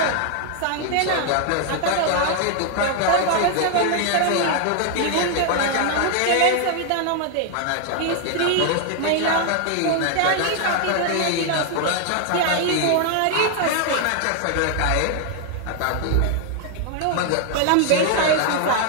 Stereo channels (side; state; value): both; different; correlation 0.00